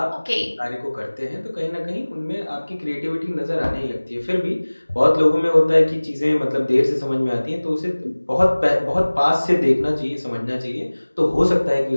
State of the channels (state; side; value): inverted; both; correlation -1.00